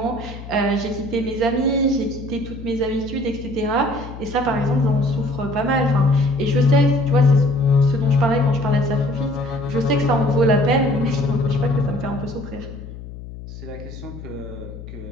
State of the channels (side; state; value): left; noise; hum, 13 dB below the sound